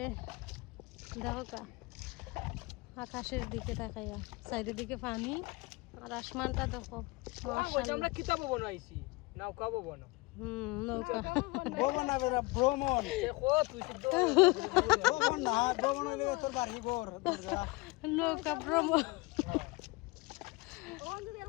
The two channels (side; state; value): right; quieter; 23.8 dB